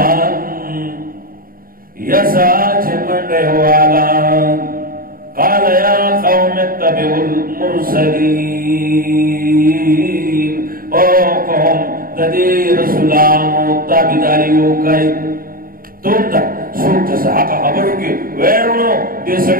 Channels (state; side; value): late; left; 0.42 ms